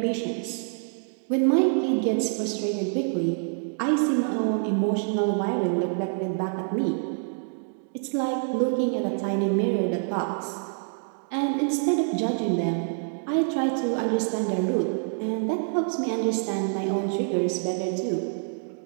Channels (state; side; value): silent; left; digital silence